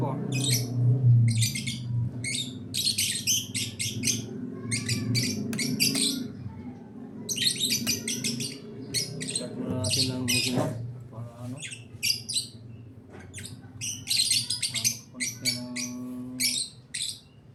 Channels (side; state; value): both; identical; correlation 1.00